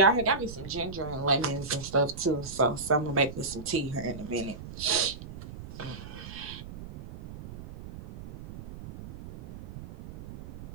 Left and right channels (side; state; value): right; noise; rumble, 13 dB below the sound